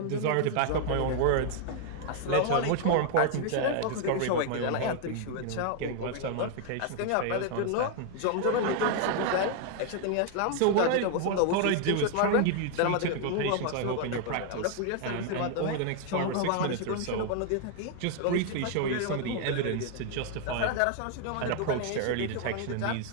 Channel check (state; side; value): different; both; correlation 0.00